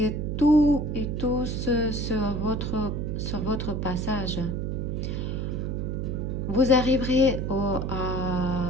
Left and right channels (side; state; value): right; noise; hum, 2 dB below the sound